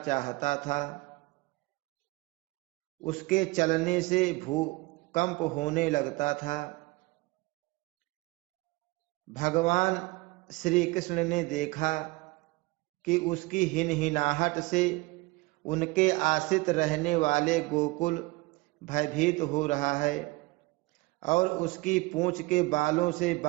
चाहता था। उसके चलने से भूकंप होने लगता था। भगवान श्री कृष्ण ने देखा कि उसकी हिनहिनाहट से उनके आश्रित रहने वाले गोकुल भयभीत हो रहा है और उसकी पूंछ के बालों से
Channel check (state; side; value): quieter; left; 23.0 dB